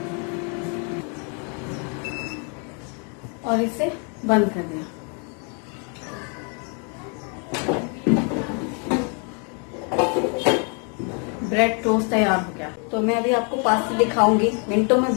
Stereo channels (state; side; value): quieter; right; 37.7 dB